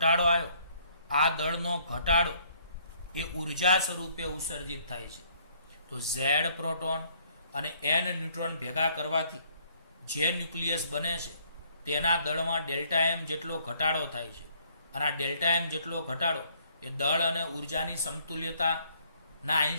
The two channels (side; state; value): both; inverted; correlation -0.64